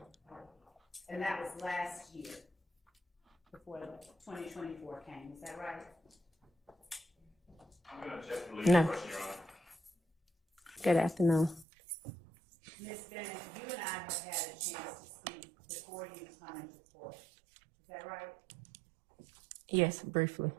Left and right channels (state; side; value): drops out; left; at 11.7 s